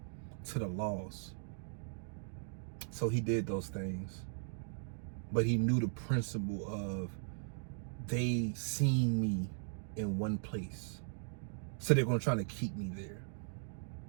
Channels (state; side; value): silent; left; digital silence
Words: to the lost. So he did those things. But he knew the principle of, they seen me in one place, so they're going to try to keep me there.